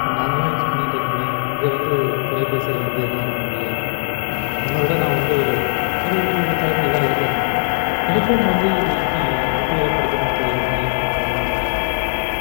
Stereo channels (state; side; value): silent; right; 59 dB below the other